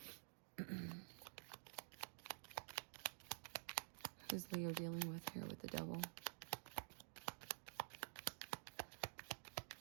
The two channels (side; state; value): left; silent; digital silence